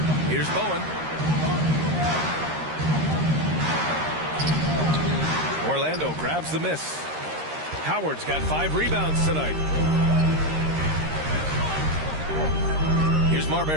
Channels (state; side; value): late; left; 13 ms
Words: Here's Bowen. Orlando grabs the miss. Howard's got 5 rebounds tonight. Here's